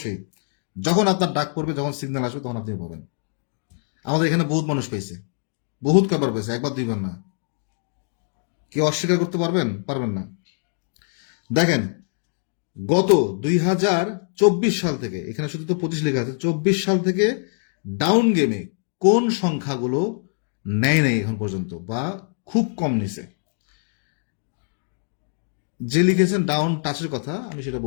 যখন আপনার ডাক পড়বে, যখন সিগন্যাল আসবে, তখন আপনি পাবেন। আমাদের এখানে বহুত মানুষ পেয়েছে, বহুত কবার পেয়েছে, একবার 2বার না। কেউ অস্বীকার করতে পারবেন? পারবেন না। দেখেন, গত 2024 সাল থেকে, এখানে শুধু তো 25 লেখা আছে, 24 সাল থেকে ডাউন গেমে কোন সংখ্যাগুলো নেয় নাই এখন পর্যন্ত বা খুব কম নিছে? যে লিখেছেন ডাউন টাচের কথা, আমি সেটা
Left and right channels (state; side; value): silent; right; 60 dB below the other